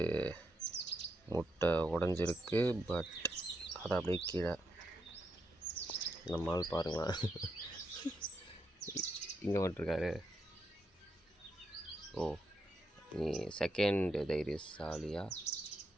முட்டை உடஞ்சிருக்கு, பட் அதை அப்படியே கீழே நம்மால் பாருங்களேன் இங்கே வந்துட்டுருக்காரு. ஓ, நீ செகண்ட் தைரியசாலியா?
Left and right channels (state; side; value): normal; both; correlation 0.82